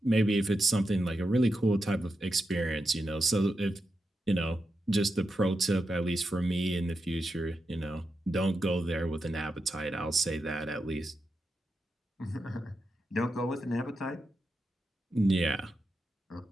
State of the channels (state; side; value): normal; both; correlation 0.87